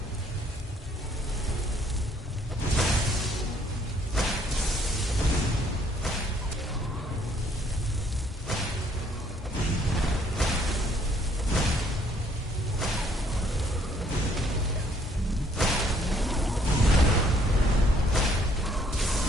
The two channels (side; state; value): both; normal; correlation 0.64